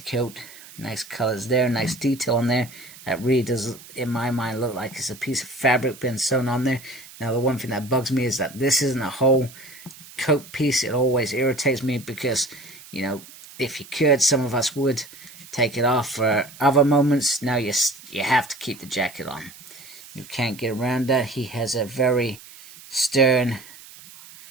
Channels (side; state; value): right; noise; hiss, 19 dB below the sound